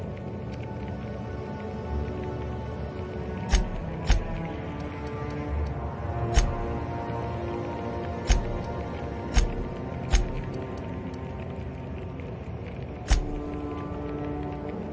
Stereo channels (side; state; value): both; identical; correlation 1.00